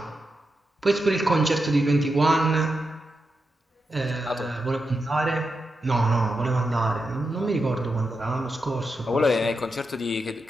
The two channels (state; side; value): normal; both; correlation 0.87